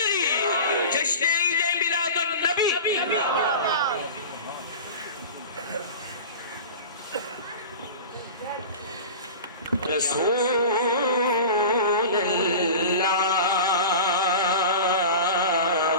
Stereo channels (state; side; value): inverted; both; correlation -0.33